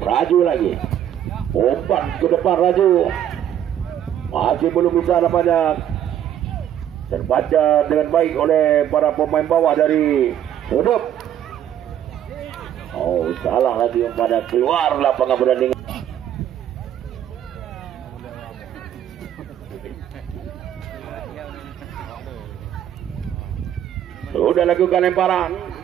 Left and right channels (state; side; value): quieter; left; 10.5 dB